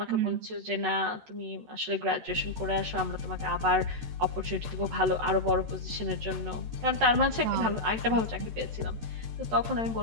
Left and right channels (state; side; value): late; left; 13 ms